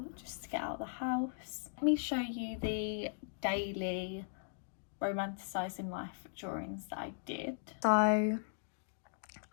just to get out of the house. Let me show you the daily romanticising life drawings that I did. So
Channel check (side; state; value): right; silent; digital silence